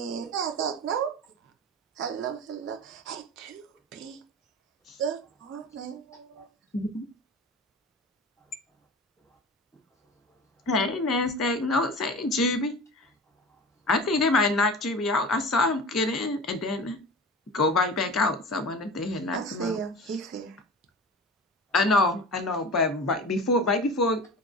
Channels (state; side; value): normal; both; correlation 0.35